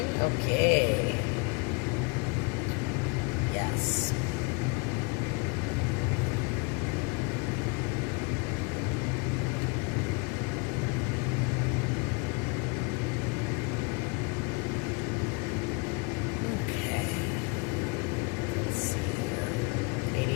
Okay. Yes. Okay.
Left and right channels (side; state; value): right; quieter; 30.7 dB